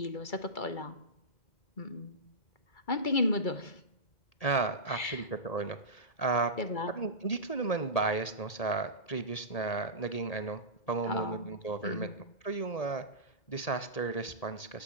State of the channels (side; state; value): right; late; 1.8 ms